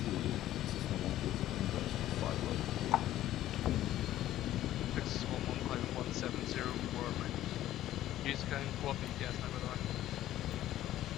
Nexus 1-1 climbing 170 for use kind co-op ETS now, by the way.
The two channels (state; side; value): quieter; right; 13.5 dB